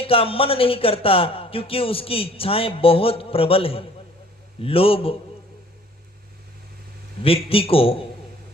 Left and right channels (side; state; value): both; normal; correlation 0.54